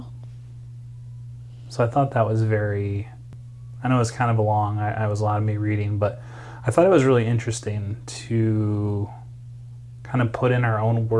So I thought that was very, I know it was kind of long, I was a lot of me reading, but I thought it was really interesting to kind of put in our own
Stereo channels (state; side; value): identical; both; correlation 1.00